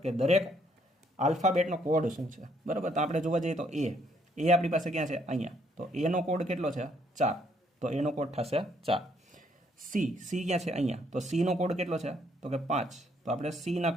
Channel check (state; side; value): normal; both; correlation 0.69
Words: કે દરેક આલ્ફાબેટનો કોડ શું છે, બરાબર. તો આપણે જોવા જઈએ તો એ આપણી પાસે ક્યાં છે? અહીંયા. તો એનો કોડ કેટલો છે? 4, તો એનો કોડ થશે 4. સી ક્યાં છે? અહીંયા. તો સીનો કોડ કેટલો છે? તો કે 5, તો આપણે સીના